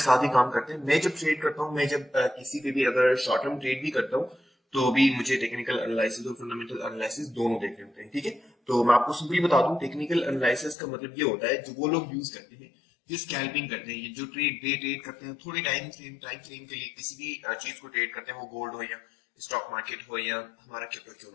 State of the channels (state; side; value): drops out; right; at 10.8 s